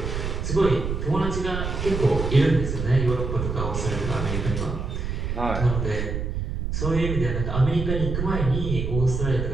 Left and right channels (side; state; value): right; noise; rumble, 3 dB below the sound